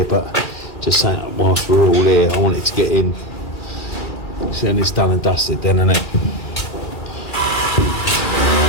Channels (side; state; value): right; late; 2.4 ms